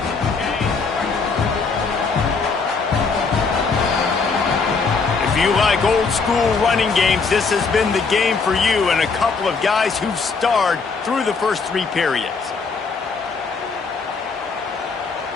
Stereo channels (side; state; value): right; quieter; 4.8 dB